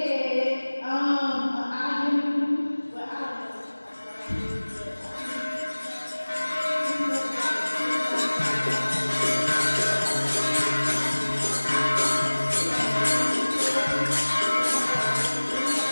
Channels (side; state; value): both; inverted; correlation -1.00